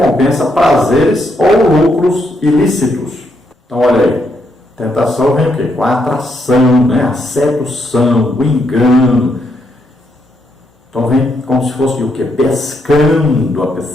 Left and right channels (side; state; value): both; normal; correlation 0.77